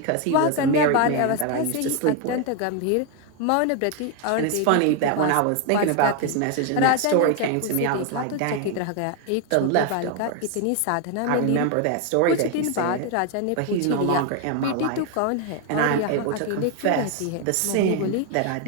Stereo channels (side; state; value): both; different; correlation 0.01